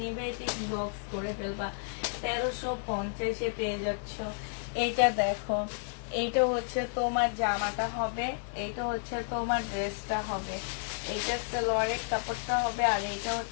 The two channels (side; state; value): right; silent; digital silence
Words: নিবে এটা ইনবক্স করে ফেলবা। 1350-এ পেয়ে যাচ্ছ। এইটা দেখো, এইটা হচ্ছে তোমার জামাটা হবে, এইটা হচ্ছে তোমার ড্রেসটা হবে, এইটা সালোয়ারের কাপড়টা হবে, আর এইটা